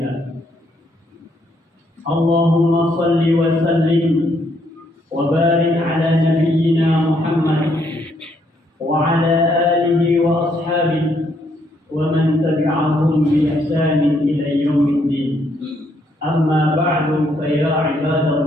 اللهم صل وسلم وبارك على نبينا محمد وعلى آله وأصحابه ومن تبعهم بإحسان إلى يوم الدين أما بعد فيا عباد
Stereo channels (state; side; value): normal; both; correlation 0.72